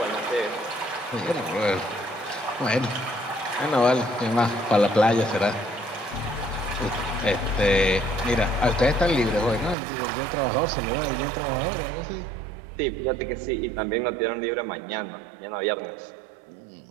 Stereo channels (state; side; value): drops out; left; at 9.8 s